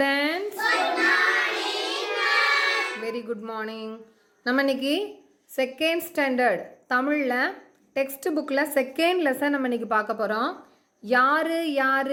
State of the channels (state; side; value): identical; both; correlation 1.00